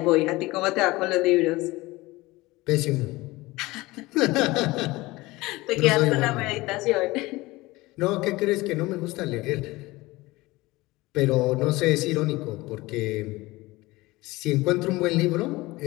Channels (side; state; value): right; quieter; 20.6 dB